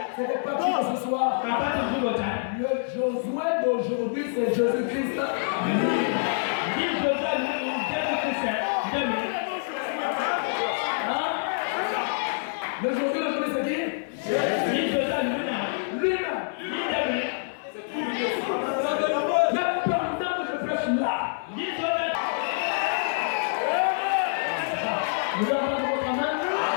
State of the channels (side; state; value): right; silent; 61 dB below the other